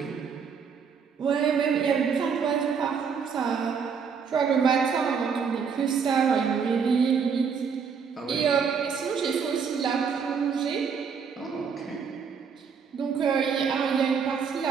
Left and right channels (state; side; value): quieter; left; 6.3 dB